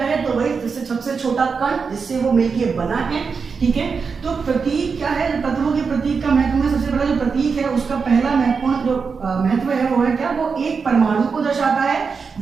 है तो वही जिससे सबसे छोटा कण जिससे वो मिलके बना है, ठीक है। तो प्रतीक क्या है, तत्वों के प्रतीक का महत्व में सबसे बड़ा जो प्रतीक है उसका पहला महत्वपूर्ण जो महत्व है वो है क्या, वो एक परमाणु को दर्शाता है।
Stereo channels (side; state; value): left; quieter; 5.3 dB